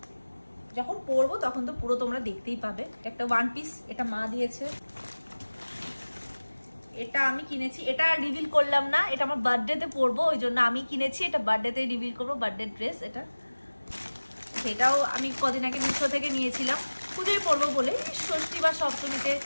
যখন পরবো তখন তো পুরো তোমরা দেখতেই পাবে। একটা ওয়ান পিস, এটা মা দিয়েছে। এটা আমি কিনেছি, এটা রিভিল করলাম না, এটা আমার বার্থডেতে পরবো ওই জন্য আমি কিনেছি। এটা বার্থডেতেই রিভিল করবো, বার্থডে ড্রেস এটা। সেটাও আমি কদিন আগে মিশো থেকে নিয়েছিলাম, পুজোয় পরবো বলে, ষষ্ঠী বা সপ্তমীতে।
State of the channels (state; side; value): inverted; both; correlation -1.00